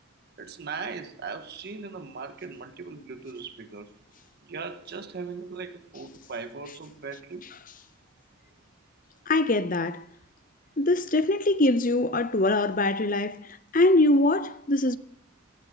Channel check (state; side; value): normal; both; correlation 0.34